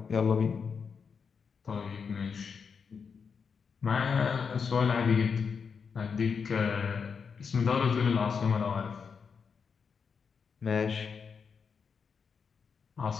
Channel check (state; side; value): quieter; right; 6.0 dB